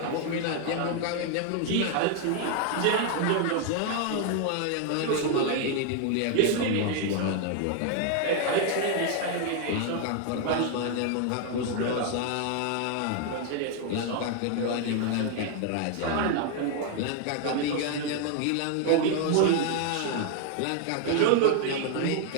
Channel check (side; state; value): both; different; correlation 0.00